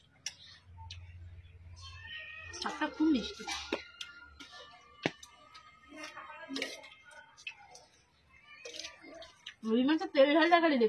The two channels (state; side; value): identical; both; correlation 1.00